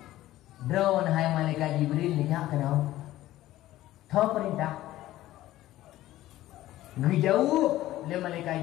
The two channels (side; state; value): right; quieter; 15.1 dB